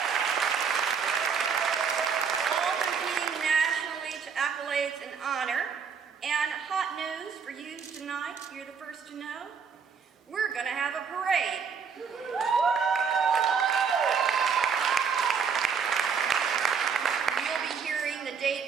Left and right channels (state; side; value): quieter; left; 6.3 dB